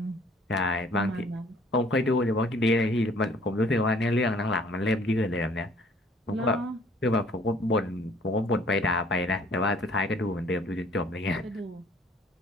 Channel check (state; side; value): normal; both; correlation 0.57